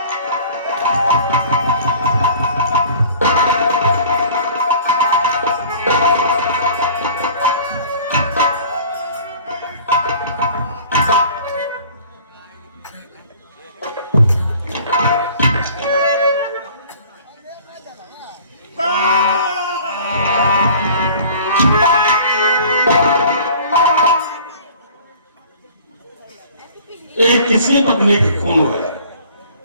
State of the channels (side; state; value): both; inverted; correlation -0.47